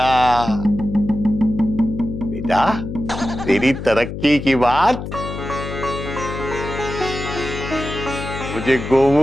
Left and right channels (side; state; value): left; noise; hum, 7 dB below the sound